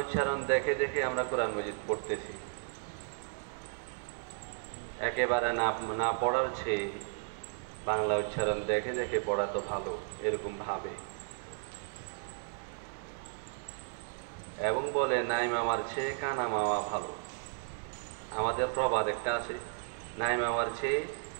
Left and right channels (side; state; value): left; silent; 55 dB below the other